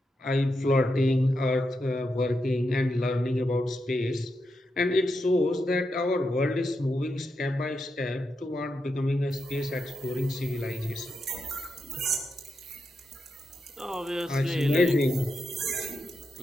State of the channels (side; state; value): both; normal; correlation 0.85